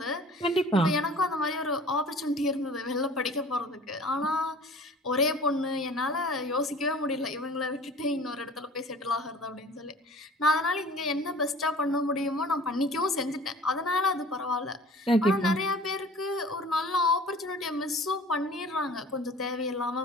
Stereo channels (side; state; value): both; normal; correlation 0.45